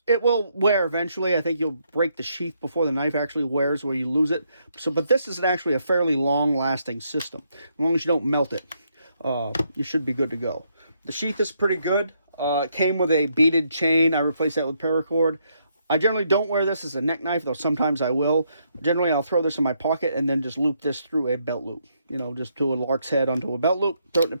will wear eventually. I think you'll break the sheath before the knife actually wears, where you lose it. So, but this is actually a fairly long-lasting system. As long as you don't melt it, you should be good to go. The sheath is pretty good. It came with a beaded chain. I replaced that with paracord. I generally don't wear this as a neck knife, though sometimes I will. Generally, I'll throw this in my pocket and then just loop this through a belt loop. You know, just do a lark's head onto a belt loop, throw it in the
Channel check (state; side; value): inverted; both; correlation -0.75